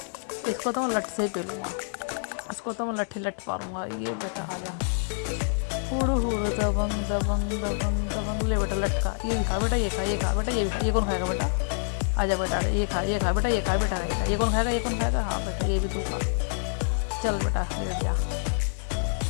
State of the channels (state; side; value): silent; right; 60 dB below the other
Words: इसको तो मैं लठ से ही पेलूँगा, इसको तो मैं लठ मारूंगा। ये बेटा आ जा, हुड़ हुड़ दबंग दबंग दबंग दबंग। ले बेटा लटका, ये भी खा बेटा, ये खा बेटा, ये भी खा। ये कौन खाएगा बेटा? आजा बेटा, ये खा बेटा, ये खा बेटा, ये कौन खाएगा? हाँ बेटा ये भी तू खा। चल बेटा लेट जा।